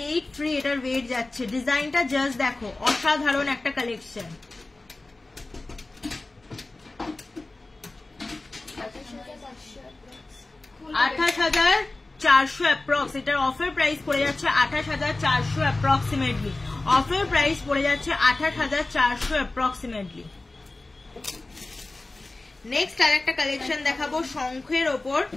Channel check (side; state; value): right; quieter; 3.1 dB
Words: এটার ওয়েট যাচ্ছে। ডিজাইনটা জাস্ট দেখো, অসাধারণ একটা কালেকশন। 28,400 অ্যাপ্রক্স, এটার অফার প্রাইস পড়ে যাচ্ছে 28,400 অ্যাপ্রক্সিমেটলি। অফার প্রাইস পড়ে যাচ্ছে 28,400 অ্যাপ্রক্সিমেটলি। নেক্সট আরেকটা কালেকশন দেখাবো শঙ্খের ওপর,